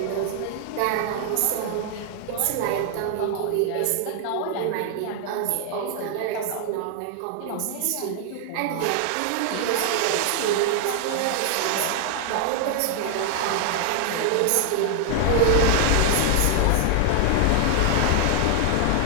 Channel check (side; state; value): both; different; correlation 0.00